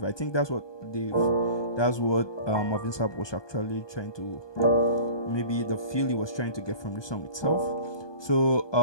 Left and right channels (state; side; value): late; right; 1.2 ms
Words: I think that's what Marvin Sapp was actually trying to, maybe the feel he was trying to get from the song itself. So